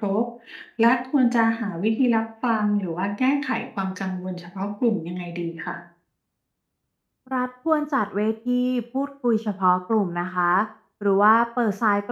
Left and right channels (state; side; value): identical; both; correlation 1.00